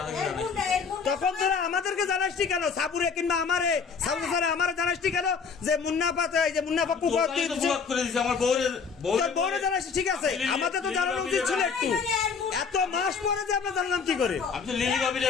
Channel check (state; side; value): quieter; right; 5.6 dB